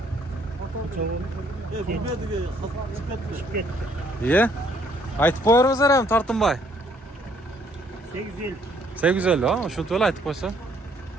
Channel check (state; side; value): normal; both; correlation 0.65